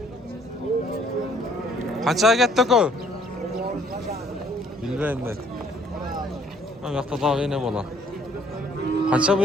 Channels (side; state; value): both; normal; correlation 0.62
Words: Kaça kettik o? Bilmeyim ben. Bu yakta daha yine bola. Kaça bu